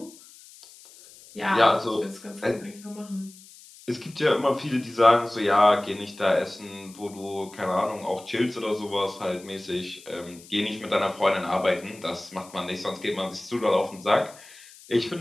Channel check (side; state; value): left; noise; hiss, 21 dB below the sound